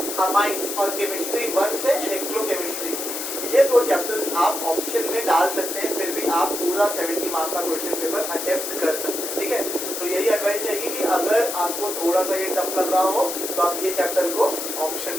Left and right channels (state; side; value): noise; left; hiss, 5 dB below the sound